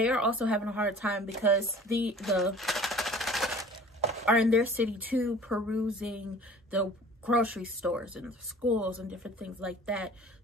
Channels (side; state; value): both; normal; correlation 0.46